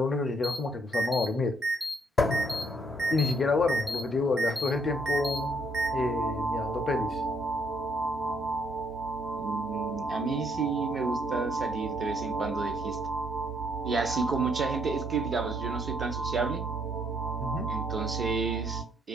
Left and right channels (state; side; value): normal; both; correlation 0.69